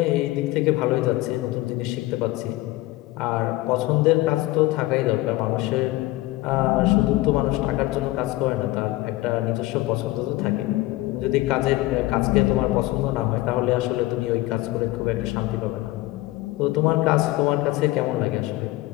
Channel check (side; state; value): right; quieter; 18.6 dB